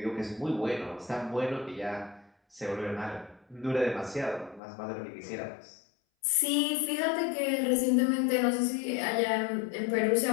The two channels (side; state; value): right; drops out; at 4.6 s